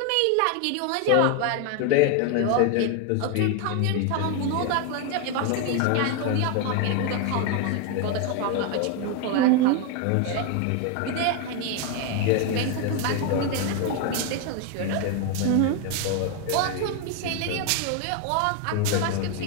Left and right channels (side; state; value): both; different; correlation 0.01